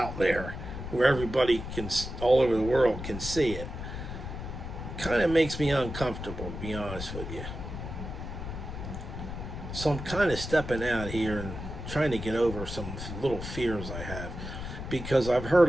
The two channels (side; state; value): left; noise; rumble, 8 dB below the sound